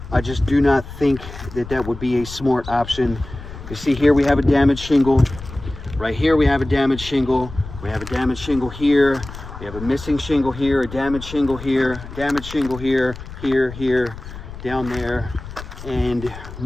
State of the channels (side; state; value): left; noise; rumble, 13 dB below the sound